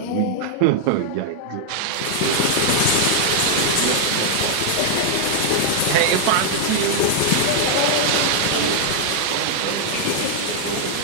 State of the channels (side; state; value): both; different; correlation -0.01